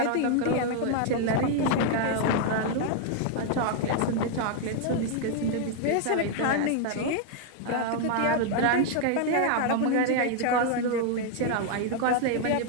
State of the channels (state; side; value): different; both; correlation 0.00